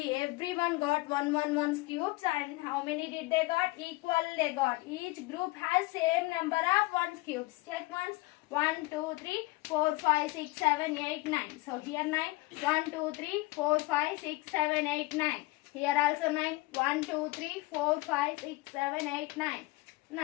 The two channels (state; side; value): quieter; right; 21.7 dB